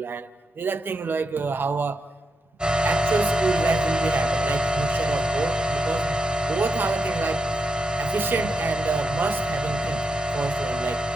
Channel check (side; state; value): both; normal; correlation 0.85